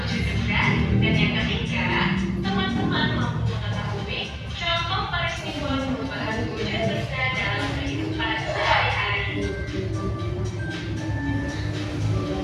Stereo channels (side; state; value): both; identical; correlation 1.00